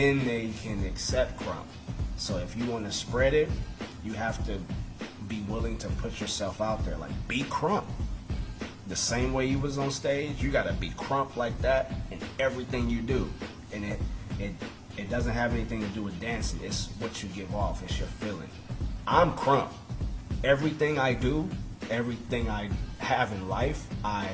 they can accept crump. So if you want to spread it, you have to be willing to put yourself out there. Like, be crump. The same way you was on stage, you gotta be crump like that in everything you do. And it doesn't have anything to do with dancing. It's what you give off. It's your feeling. I'm crump. Everything I do, everything I have in life, I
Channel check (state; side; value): identical; both; correlation 1.00